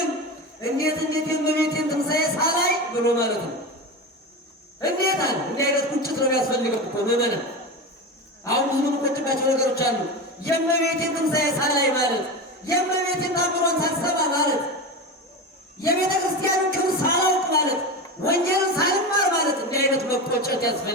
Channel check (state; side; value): normal; both; correlation 0.23